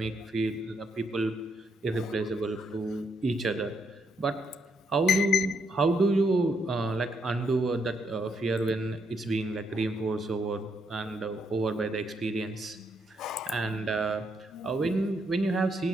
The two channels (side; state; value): both; normal; correlation 0.76